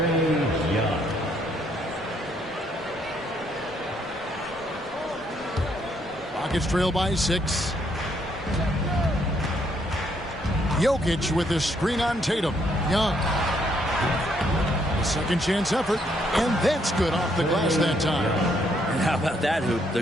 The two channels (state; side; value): normal; both; correlation 0.71